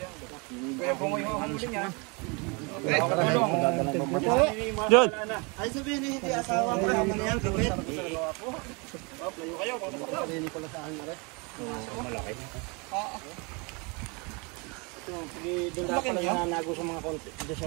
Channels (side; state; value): left; quieter; 30.3 dB